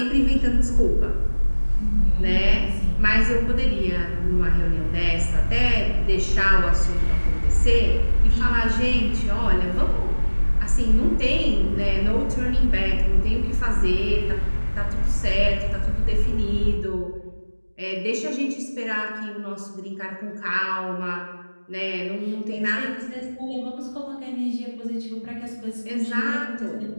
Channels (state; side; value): inverted; both; correlation -1.00